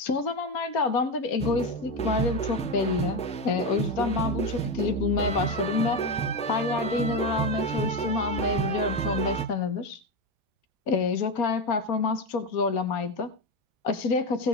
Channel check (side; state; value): both; normal; correlation 0.15